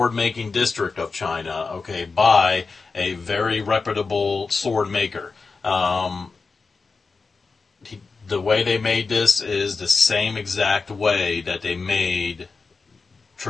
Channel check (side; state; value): right; quieter; 4.4 dB